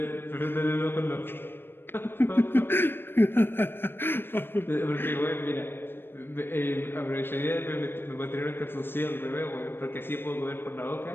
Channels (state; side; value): late; right; 0.10 ms